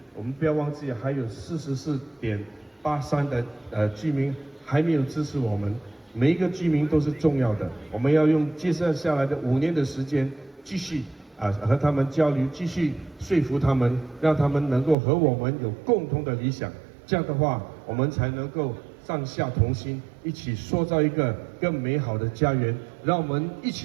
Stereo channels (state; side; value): drops out; left; at 15.0 s